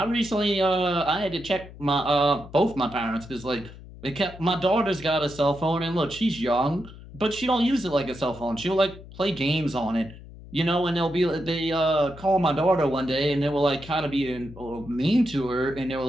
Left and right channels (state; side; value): noise; left; hum, 17 dB below the sound